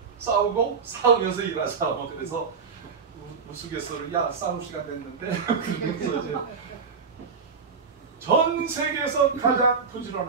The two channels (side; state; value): left; quieter; 5.5 dB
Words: 싸우고 싸우면서 일하자. 뭐 그래서 우스갯소리 야 싸울 시간 됐는데 그러면서 이제 전 세계에서 가장